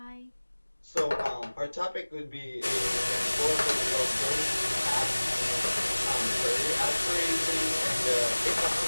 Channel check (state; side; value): inverted; both; correlation -1.00